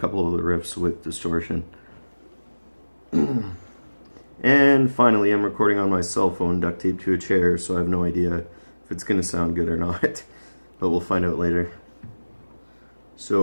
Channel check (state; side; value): inverted; both; correlation -1.00